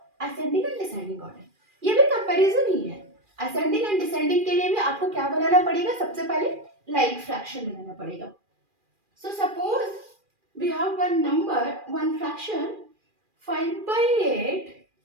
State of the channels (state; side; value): late; left; 2.4 ms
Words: ascending and descending order, ये भी कंपैरिजन ही है। असेंडिंग एंड डिसेंडिंग के लिए भी आपको क्या बनाना पड़ेगा, सबसे पहले लाइक फ्रैक्शन बनाना पड़ेगा। So suppose we have one number, one fraction 5 by 8,